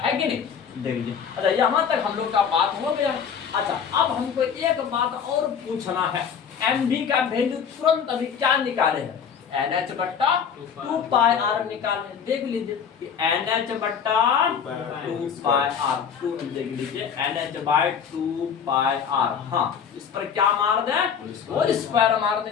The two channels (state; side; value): quieter; right; 7.2 dB